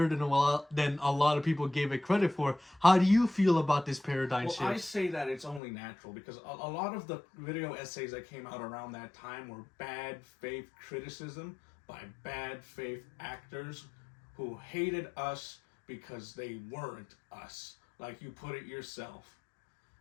than a lot of people gave it credit for. How do you feel about this paradigm shift? I say that it's only natural because a lot of the video essays that came out around that time were bad faith criticism by bad faith actors who hated us because they weren't us. Like you put it yourself.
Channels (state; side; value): drops out; right; at 5.6 s